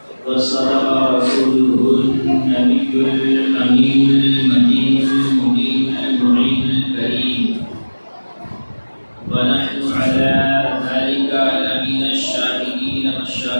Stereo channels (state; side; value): inverted; both; correlation -1.00